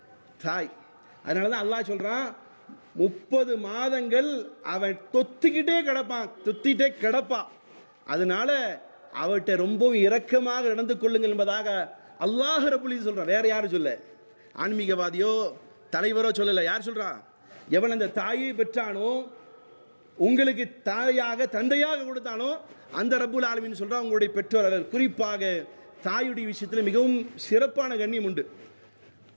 தாய். அதனால தான் அல்லாஹ் சொல்றான், 30 மாதங்கள் அவன் தொத்திக்கிட்டே கிடப்பான். அதனால அவட்ட ரொம்பவும் இரக்கமாக நடந்து கொள்ளுங்கள் என்பதாக அல்லாஹ் ரப்புல் இஸ்ஸத் சொல்றான். வேற யாரும் சொல்ல, ஆன்மீகவாதியோ தலைவரோ சொல்லல. யார் சொல்றா? எவன் அந்த தாயை பெற்றானோ, உங்களுக்கு தாயாக தந்தையாக கொடுத்தானோ அந்த ரப்புல் ஆலமீன் சொல்றான், உங்களுடைய பெற்றோர்கள் குறிப்பாக தாயுடைய விஷயத்தில் மிகவும் சிறப்பான கண்ணியம் உண்டு.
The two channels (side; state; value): both; inverted; correlation -1.00